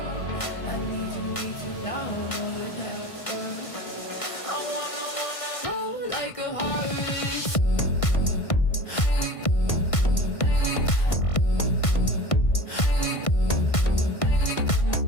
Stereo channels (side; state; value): right; late; 1.5 ms